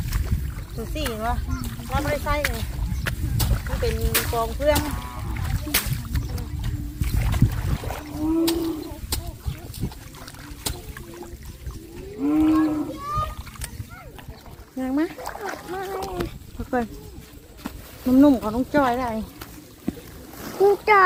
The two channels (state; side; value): identical; both; correlation 1.00